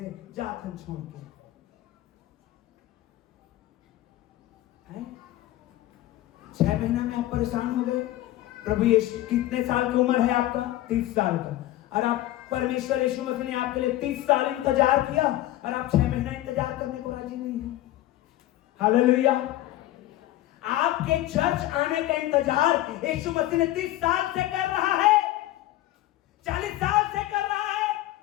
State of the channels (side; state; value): right; quieter; 15.1 dB